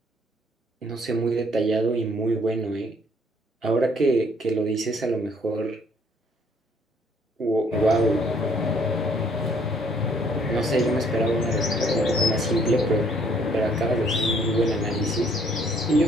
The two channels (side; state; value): both; normal; correlation 0.63